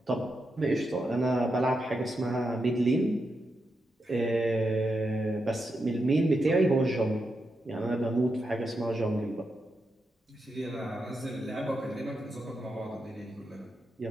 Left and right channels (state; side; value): normal; both; correlation 0.86